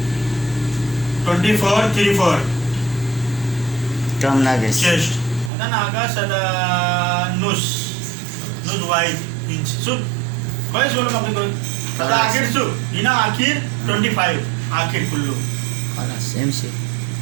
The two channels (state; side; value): drops out; left; at 5.5 s